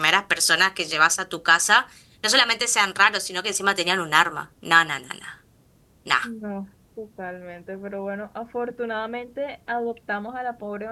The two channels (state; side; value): identical; both; correlation 1.00